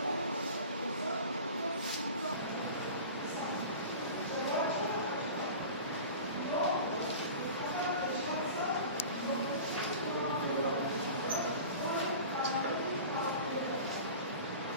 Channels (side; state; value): both; inverted; correlation -0.37